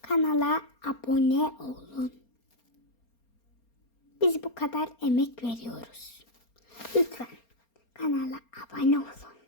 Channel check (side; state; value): right; late; 4.3 ms